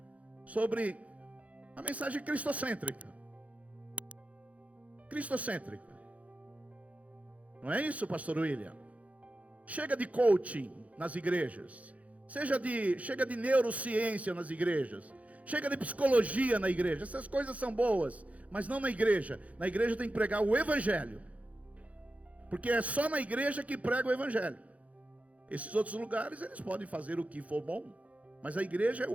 sobre a mensagem cristocêntrica. Cristocêntrica. Não é isso, pastor William? Chega de coaching nas igrejas. Chega de neurociência nas igrejas. Chega de psicologia na igreja. Essas coisas são boas, mas não na igreja. Na igreja tem que pregar o evangelho. Porque é só na igreja que prega o evangelho. Esses outros lugares eles podem fazer o que for bom, mas a igreja é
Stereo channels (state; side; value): late; left; 0.067 ms